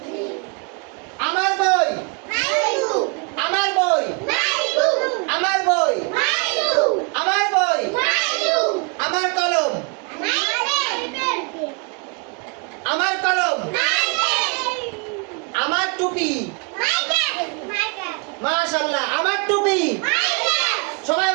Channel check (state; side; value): quieter; left; 35.7 dB